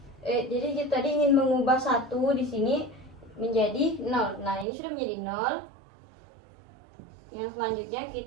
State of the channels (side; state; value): left; drops out; at 4.7 s